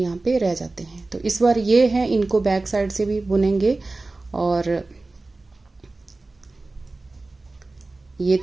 पे रह जाते हैं। तो इस बार ये हैं, इनको बैक साइड से भी बुनेंगे, और ये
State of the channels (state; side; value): quieter; left; 3.3 dB